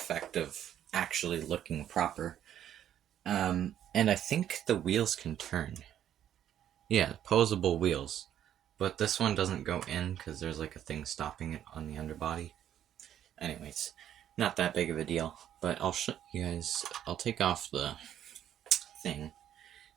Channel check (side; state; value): left; quieter; 10.6 dB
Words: of actually looking proper. And I think the wheels can turn. Yeah, posable wheels. But this one doesn't go in because there's like a thing stopping it on the underbody. Anyways, not that big of a deal. But I'll show you guys, I'll take off the thing